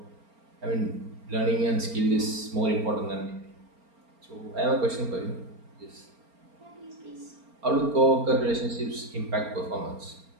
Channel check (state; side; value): late; left; 4.3 ms